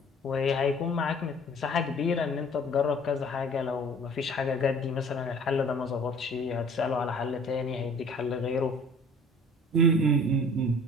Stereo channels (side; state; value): both; normal; correlation 0.49